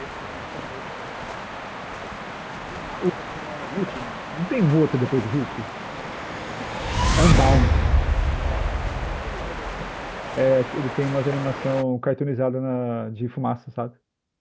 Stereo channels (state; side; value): identical; both; correlation 1.00